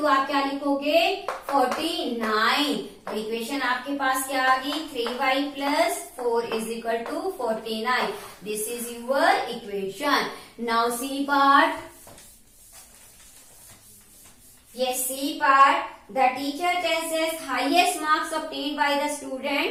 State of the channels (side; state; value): both; identical; correlation 1.00